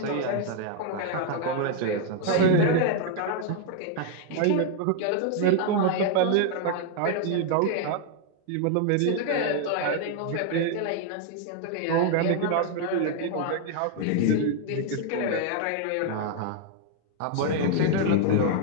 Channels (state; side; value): different; both; correlation 0.00